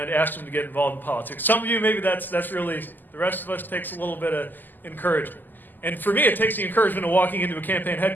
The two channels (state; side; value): late; right; 0.088 ms